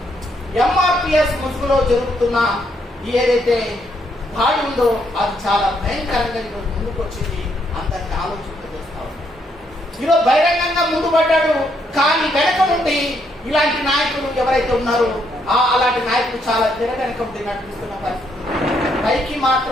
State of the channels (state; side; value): normal; both; correlation 0.74